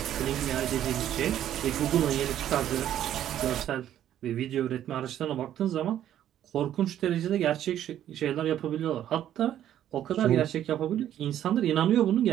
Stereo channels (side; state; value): left; quieter; 11.3 dB